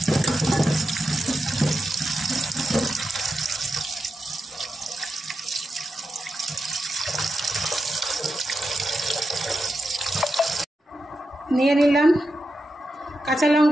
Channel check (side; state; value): both; normal; correlation 0.88